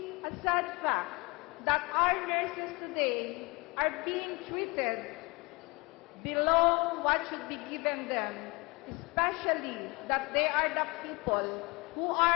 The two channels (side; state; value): right; quieter; 26.5 dB